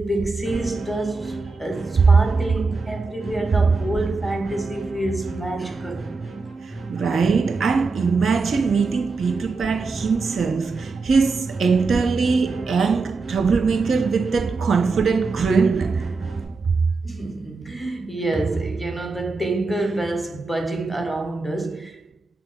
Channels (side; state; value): left; quieter; 4.1 dB